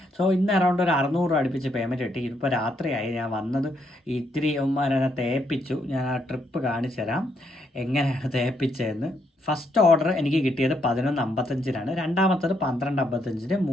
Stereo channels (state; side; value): normal; both; correlation 0.75